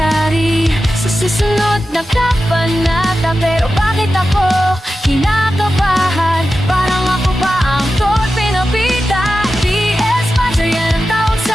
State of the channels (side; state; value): both; normal; correlation 0.92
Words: sa susunod na kabanata. Pero bakit ako kinakabahan? Parang ako pa ang torpe na bida. PS Master, yan ang tawag